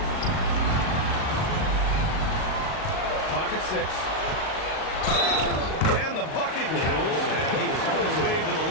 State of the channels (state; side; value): late; right; 38 ms